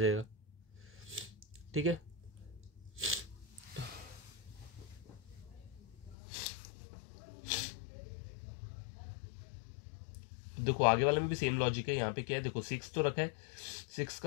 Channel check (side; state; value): right; drops out; at 6.2 s